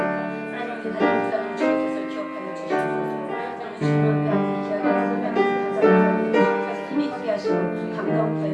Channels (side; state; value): both; identical; correlation 1.00